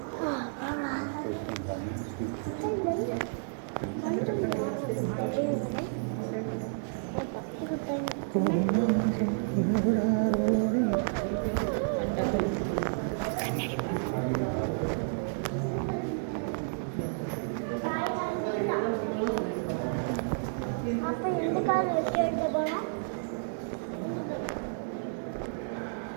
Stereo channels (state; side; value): silent; left; digital silence